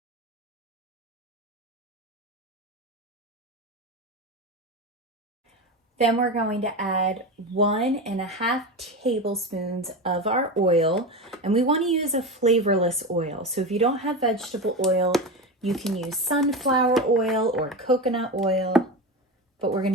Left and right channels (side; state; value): both; normal; correlation 0.21